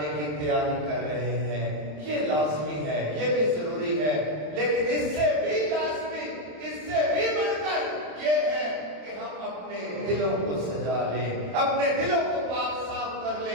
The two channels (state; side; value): late; left; 27 ms